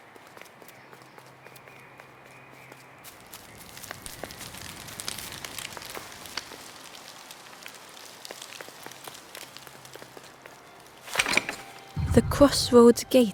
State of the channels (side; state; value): both; identical; correlation 1.00